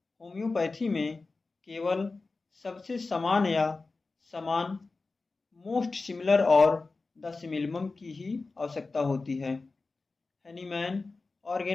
होम्योपैथी में केवल सबसे समान या समान, मोस्ट सिमिलर और द सिमिलम की ही आवश्यकता होती है। हैनीमैन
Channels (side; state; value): right; quieter; 3.8 dB